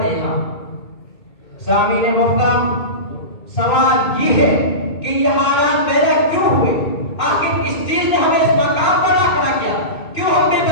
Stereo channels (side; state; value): right; late; 2.2 ms